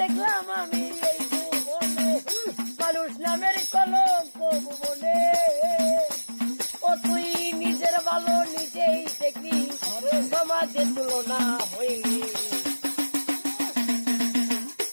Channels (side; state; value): both; inverted; correlation -1.00